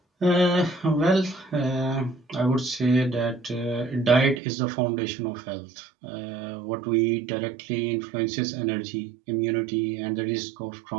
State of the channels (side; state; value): left; drops out; at 4.4 s